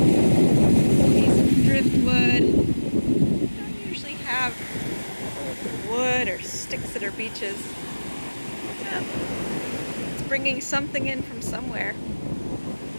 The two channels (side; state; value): both; inverted; correlation -1.00